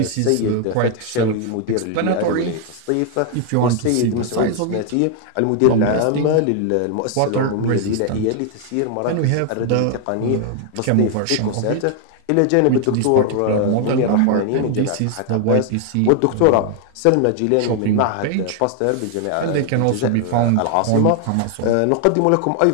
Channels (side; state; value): both; different; correlation 0.00